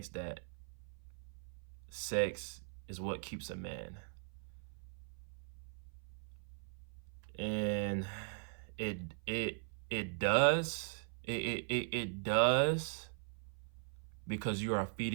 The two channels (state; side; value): silent; left; 51 dB below the other